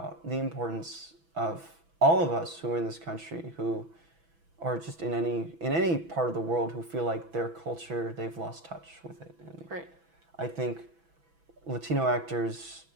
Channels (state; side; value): late; left; 6.1 ms